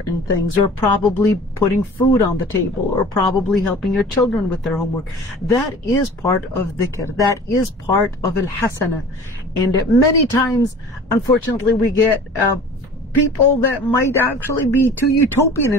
things, or probably putting food on the table, or probably helping your children with their homework. That is part of dhikr. That is part of al-hasana. And many times, unfortunately, we get people that might actually be too utopian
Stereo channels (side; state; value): both; normal; correlation 0.43